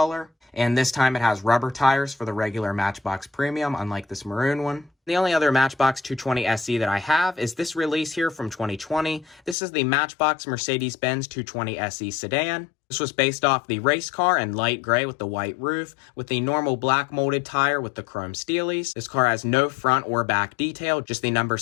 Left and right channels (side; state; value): right; drops out; at 9.6 s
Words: And this time it has rubber tires for the regular Matchbox Premium, unlike this maroon one. The only other Matchbox 220 SE that I have is this release here from 2020. This is the Matchbox Mercedes-Benz 220 SE sedan. This was based off the race car in light gray with the white roof, with the normal black molded tire with the chrome steelies. This car has no front or back detail, just the number